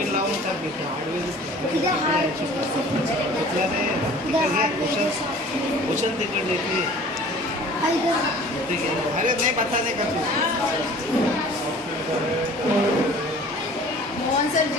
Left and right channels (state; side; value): normal; both; correlation 0.47